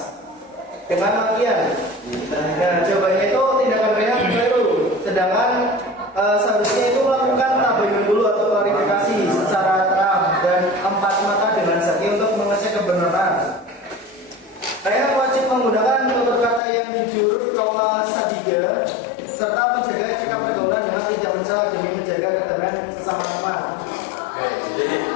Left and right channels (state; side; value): drops out; right; at 16.6 s